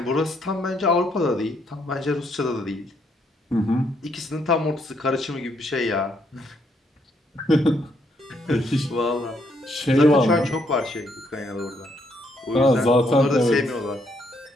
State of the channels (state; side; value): normal; both; correlation 0.73